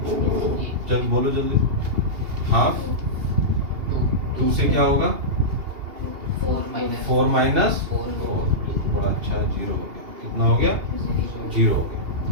चल बोलो जल्दी। हाफ 2 से क्या होगा, 4 माइनस 4। बड़ा अच्छा है, 0 हो गया। कितना हो गया, 0 हो गया।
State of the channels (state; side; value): late; left; 2.8 ms